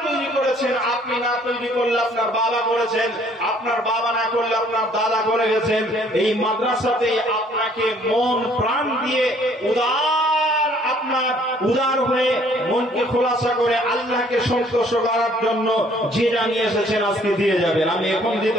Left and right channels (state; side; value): normal; both; correlation 0.60